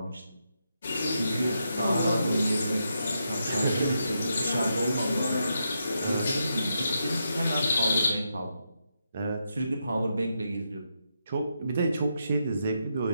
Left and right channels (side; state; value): both; inverted; correlation -0.83